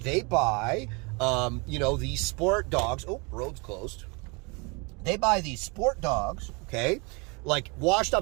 They buy, these sport dogs. Oh, road's closed. They buy these sport dogs, okay? Like washed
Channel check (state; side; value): quieter; left; 30.3 dB